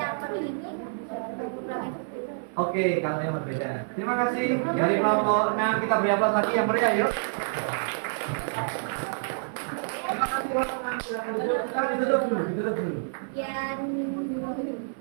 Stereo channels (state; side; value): silent; left; 60 dB below the other